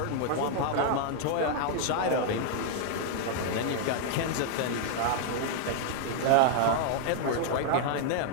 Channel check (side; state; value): both; different; correlation -0.01